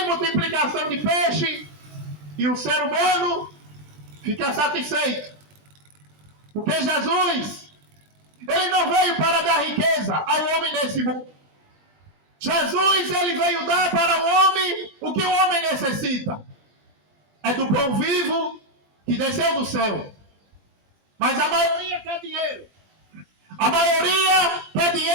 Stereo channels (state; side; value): late; left; 20 ms